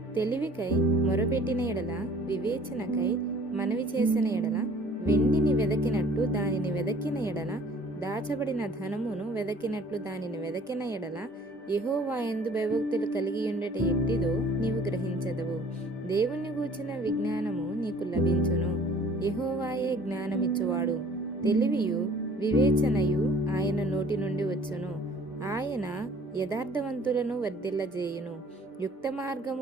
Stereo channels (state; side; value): normal; both; correlation 0.53